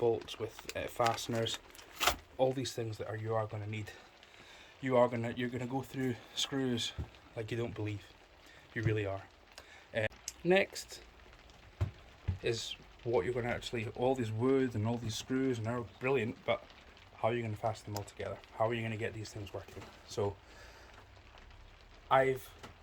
with fasteners, all these things that you are going to need. You're going to go through screws like you don't believe. You really are. Next is what you're going to actually, all these wood and all these screws, and they're brilliant, but how are you going to fasten them all together? How are you going to get these things working? So I've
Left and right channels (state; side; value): identical; both; correlation 1.00